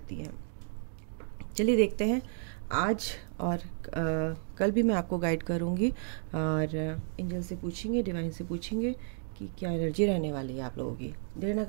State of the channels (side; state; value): left; silent; 56 dB below the other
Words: हैं। चलिए देखते हैं आज और कल भी मैं आपको गाइड करूँगी और एंजल से पूछेंगे, डिवाइन से पूछेंगे कि क्या एनर्जी रहने वाली है आप लोगों की। देर ना